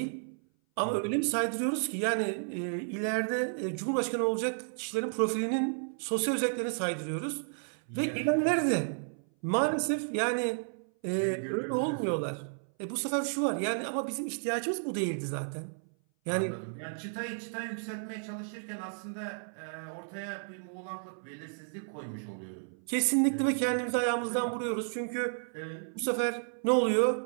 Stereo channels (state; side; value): silent; left; 56 dB below the other